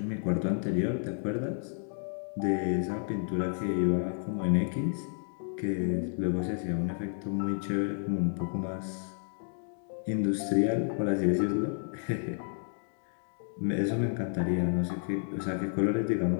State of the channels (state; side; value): silent; right; digital silence